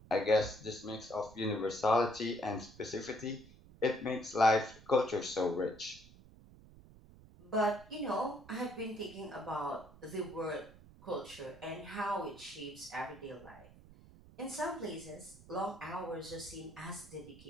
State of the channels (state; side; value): noise; right; rumble, 21 dB below the sound